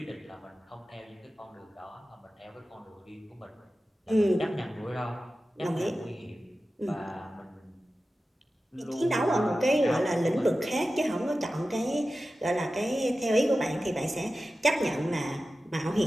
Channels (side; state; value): both; normal; correlation 0.94